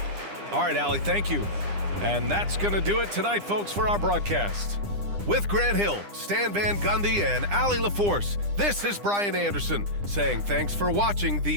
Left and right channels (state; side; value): late; left; 9.9 ms